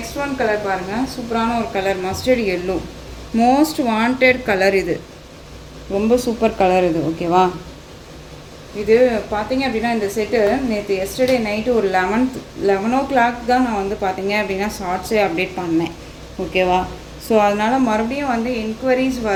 ஒன் கலர் பாருங்கள். சூப்பரான ஒரு colour, mustard yellow, most wanted colour இது. ரொம்ப சூப்பர் கலர் இது. ஓகேவா? இது பார்த்தீங்க அப்படின்னா இந்த செட்டு நேற்று எஸ்டர்டே நைட்டு ஒரு 11 o'clock தான் நான் வந்து பார்த்தீங்க அப்படின்னா ஷார்ட்ஸே அப்டேட் பண்ணேன். ஓகேவா? ஸோ அதனால் மறுபடியும் வந்து என்கொயரிஸ்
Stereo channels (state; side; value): identical; both; correlation 1.00